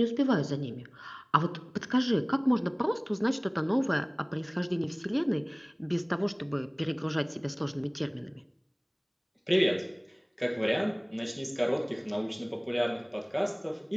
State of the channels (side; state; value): both; identical; correlation 1.00